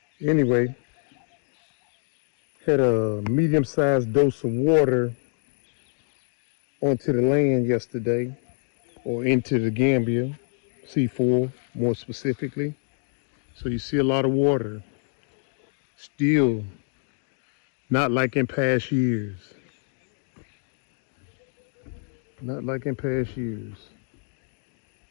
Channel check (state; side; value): silent; right; 56 dB below the other